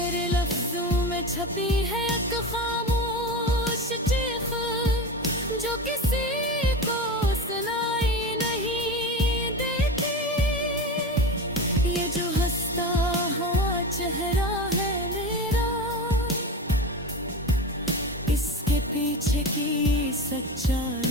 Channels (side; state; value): both; normal; correlation 0.25